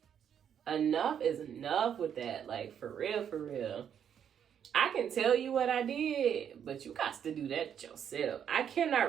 Enough is enough with that. Like, for real, for real. I can tell you what I did, but you got to do that yourself. I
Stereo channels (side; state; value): left; quieter; 8.6 dB